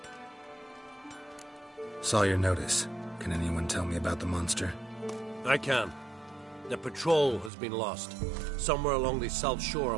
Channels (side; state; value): left; drops out; at 7.5 s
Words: Saw your notice. Can anyone tell me about the monster? I can. The patrol has been lost. Somewhere along the south shore